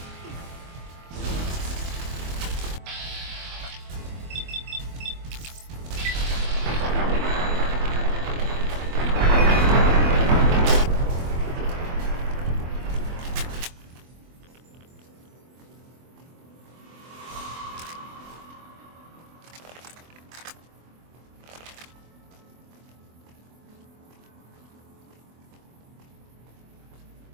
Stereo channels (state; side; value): late; left; 24 ms